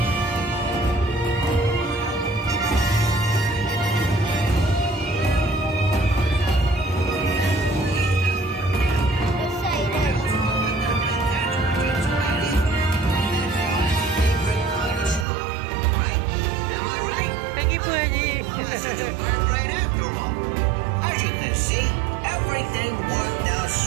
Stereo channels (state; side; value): drops out; left; at 15.2 s